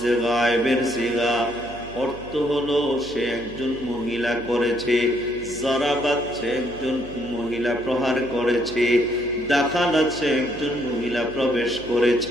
গায়েবের সিগা, অর্থ হলো সে একজন মহিলা করেছে। জরাবাত, সে একজন মহিলা প্রহার করেছে। দাখালাত, সে একজন মহিলা প্রবেশ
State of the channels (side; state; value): right; noise; hum, 17 dB below the sound